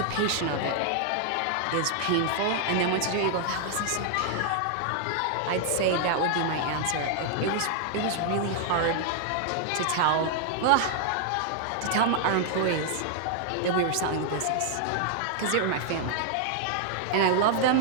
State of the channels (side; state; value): both; different; correlation 0.00